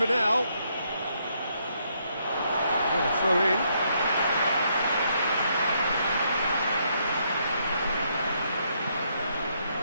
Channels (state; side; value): inverted; both; correlation -0.74